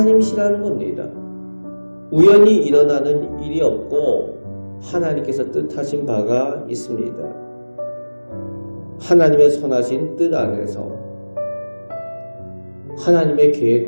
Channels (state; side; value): inverted; both; correlation -1.00